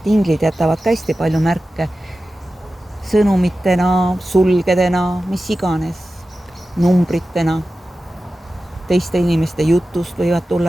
inglid jätavad ka hästi palju märke sõnumitena, sulgedena, mis iganes, numbritena. Teiste inimeste jutust võivad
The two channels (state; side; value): normal; both; correlation 0.94